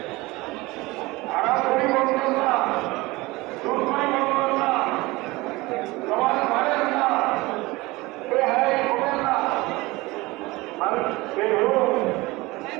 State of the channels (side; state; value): left; quieter; 21.6 dB